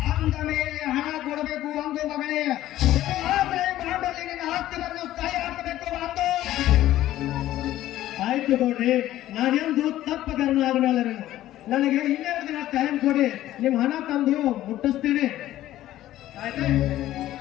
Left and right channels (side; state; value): right; quieter; 14.0 dB